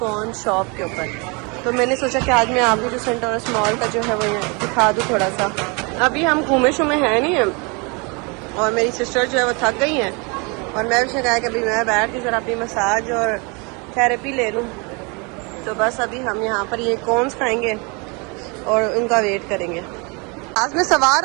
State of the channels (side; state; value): left; quieter; 30.6 dB